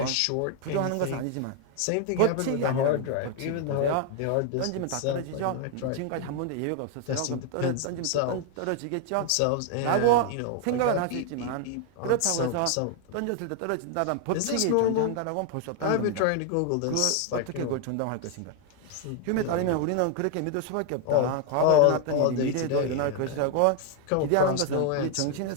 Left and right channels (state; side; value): different; both; correlation 0.00